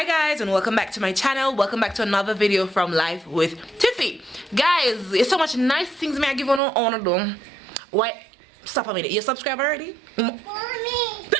guys, and welcome back to my channel. Welcome back to another video from Life with Tiffy. Guys, it's so much nice things me I give on do. Why? Stop a minute. You subscribe already? Mommy.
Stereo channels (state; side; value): drops out; left; at 6.6 s